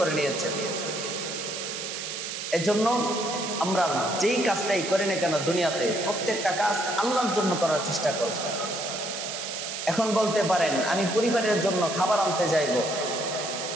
নিয়েছেন। এজন্য আমরা যেই কাজটাই করি না কেন দুনিয়াতে, প্রত্যেকটা কাজ আল্লাহর জন্য করার চেষ্টা করব। এখন বলতে পারেন আমি পরিবারের জন্য খাবার আনতে যাইব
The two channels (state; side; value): noise; right; hiss, 6 dB below the sound